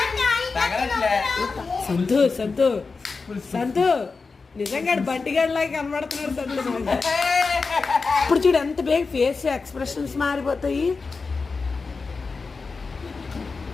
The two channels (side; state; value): right; quieter; 4.4 dB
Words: సంతు సంతు సంతు నిజంగా బంటిగాడిలాగా కనబడుతున్నాడు సంతు. ఇప్పుడు చూడు ఎంత బేగ ఫేస్ ఎక్స్ప్రెషన్స్ మారిపోతాయి.